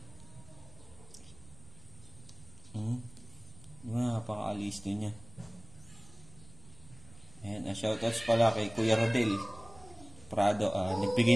Napaka-alisto niya. Ayan, shoutouts pala kay Kuya Rodel Prado.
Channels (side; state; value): right; noise; rumble, 22 dB below the sound